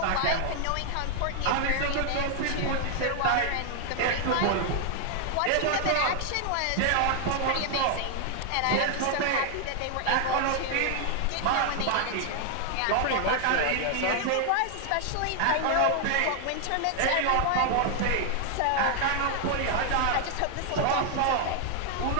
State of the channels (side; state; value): both; different; correlation 0.00